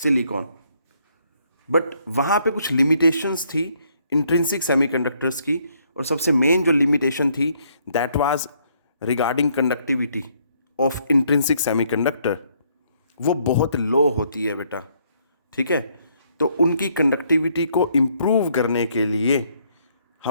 बट वहाँ पे कुछ लिमिटेशंस थी इंट्रिंसिक सेमीकंडक्टर्स की, और सबसे मेन जो लिमिटेशन थी that was regarding conductivity of intrinsic semiconductor. वो बहुत लो होती है बेटा, ठीक है। तो उनकी कंडक्टिविटी को इम्प्रूव करने के लिए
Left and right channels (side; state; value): both; inverted; correlation -0.69